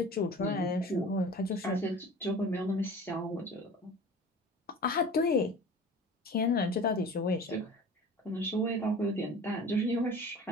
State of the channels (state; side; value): normal; both; correlation 0.40